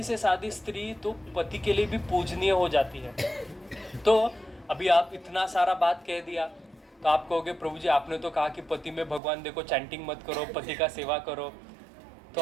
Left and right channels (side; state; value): left; drops out; at 9.2 s